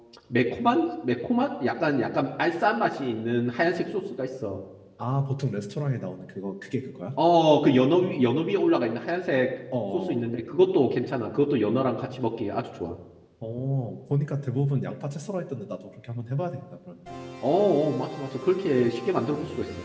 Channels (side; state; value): both; identical; correlation 1.00